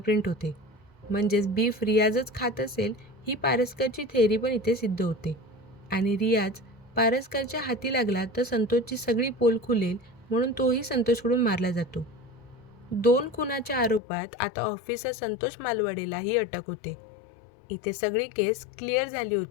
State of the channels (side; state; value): right; drops out; at 14.0 s